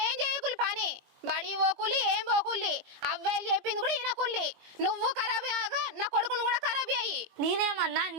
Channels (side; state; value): left; late; 21 ms